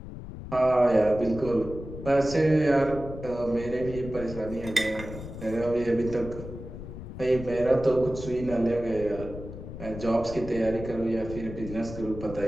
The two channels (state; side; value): noise; left; rumble, 11 dB below the sound